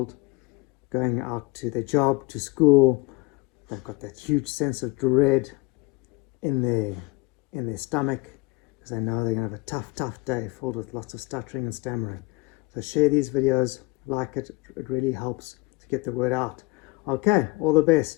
going out to their job, to school. They've got that huge sense of dread in their stomach because they know they're going to have a tough day filled with lots of stuttering and stammering. So share these videos, like it. It really helps to get the word out. Okay, all the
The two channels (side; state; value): right; quieter; 23.2 dB